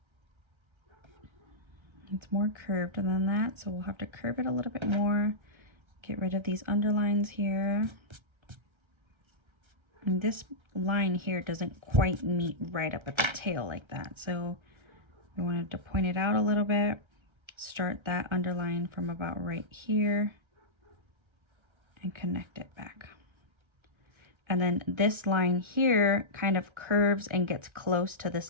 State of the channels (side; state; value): left; late; 1.3 ms